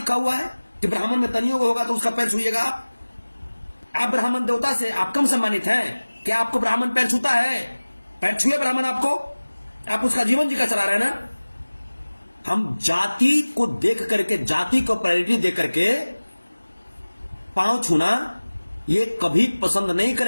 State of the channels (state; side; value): inverted; both; correlation -1.00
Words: हुआ है कि ब्राह्मण में तनियोग होगा तो उसका पैर छूइएगा आप ब्राह्मण देवता से आप कम सम्मानित हैं? क्या आपको ब्राह्मण पैर छूता है? पैर छुए ब्राह्मण आपको, आप उसका जीवन जी का चला रहे हैं ना। हम जाति को देख करके, जाति को प्रायोरिटी दे करके पांव छूना ये कभी पसंद नहीं